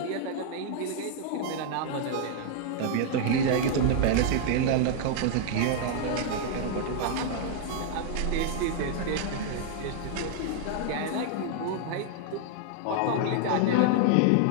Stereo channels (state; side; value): different; both; correlation -0.01